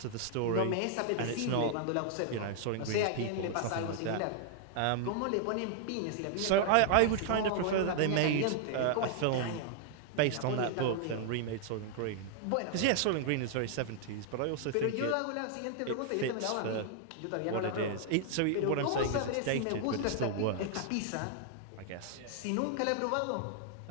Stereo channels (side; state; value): both; different; correlation -0.01